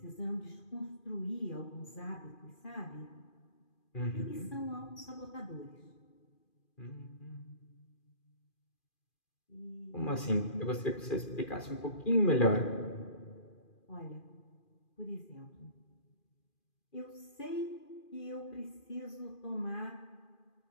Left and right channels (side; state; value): right; late; 2.4 ms